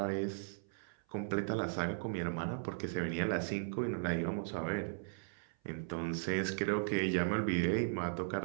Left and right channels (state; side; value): silent; left; 53 dB below the other